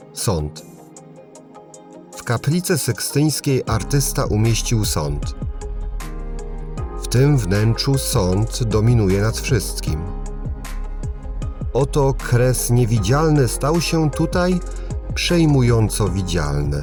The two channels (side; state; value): both; identical; correlation 1.00